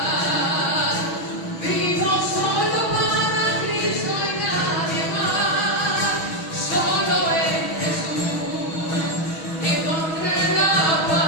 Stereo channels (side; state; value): right; late; 6.3 ms